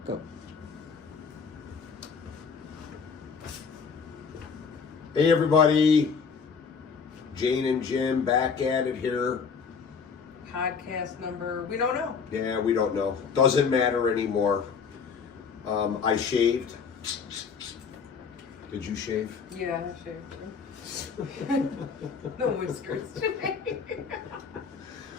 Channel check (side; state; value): right; quieter; 5.8 dB